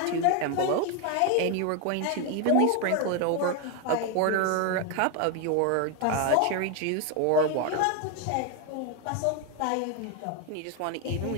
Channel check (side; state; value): both; different; correlation 0.01